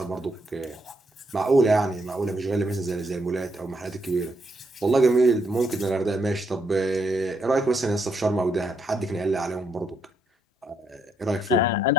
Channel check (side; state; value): both; normal; correlation 0.76